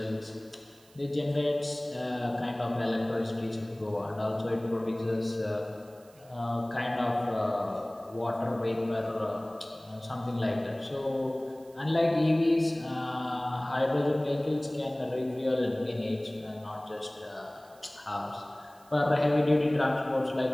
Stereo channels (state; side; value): noise; right; hiss, 28 dB below the sound